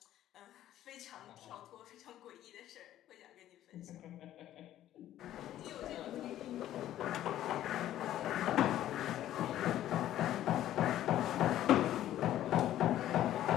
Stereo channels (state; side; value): quieter; right; 12.7 dB